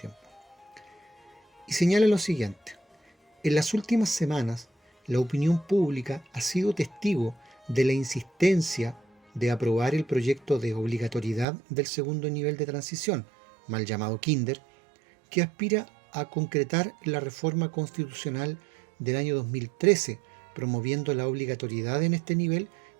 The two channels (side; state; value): left; drops out; at 11.5 s